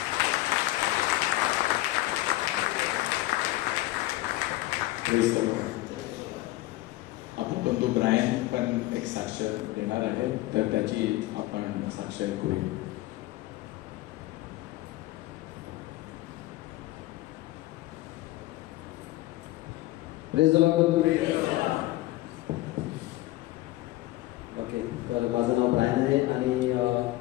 आपला बंधू ब्रायन पण एक साक्ष देणार आहे, तर त्याची आपण साक्ष ऐकूया. ओके, तर माझं नाव ब्रायन आहे आणि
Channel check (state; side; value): quieter; right; 17.7 dB